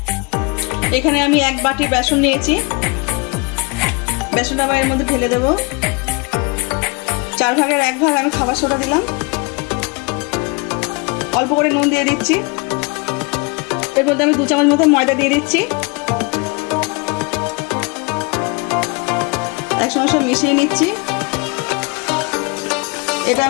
এখানে আমি 1 বাটি বেসন নিয়েছি, বেসনটা আবার এর মধ্যে ঢেলে দেবো। 4 ভাগের 1 ভাগ আমি খাবার সোডা দিলাম, অল্প করে নুন দিয়ে দিচ্ছি। এর মধ্যে আমি 2 চামচ মতো ময়দা দিয়ে দিচ্ছি, একসঙ্গে সব মিশিয়ে নিচ্ছি। এটা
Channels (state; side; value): quieter; right; 28.6 dB